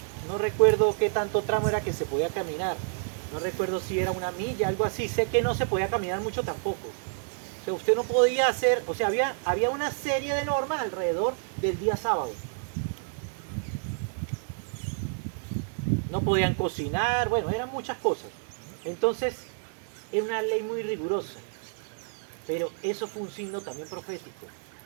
No recuerdo qué tanto tramo era que se podía caminar. No recuerdo si era una milla, algo así. Sé que no se podía caminar mucho tampoco. O sea, usted no podía hacer, o sea, había una serie de normas alrededor del día sábado. No podían cocinar, bueno, eran muchas cosas. Entonces, era una ley muy rigurosa. Pero eso fue un signo también profético.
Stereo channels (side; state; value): left; silent; digital silence